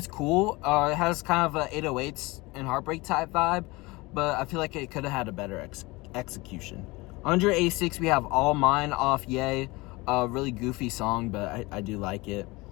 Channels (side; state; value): right; quieter; 23.1 dB